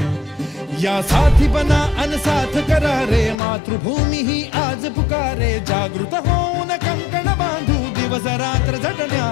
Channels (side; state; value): right; drops out; at 3.4 s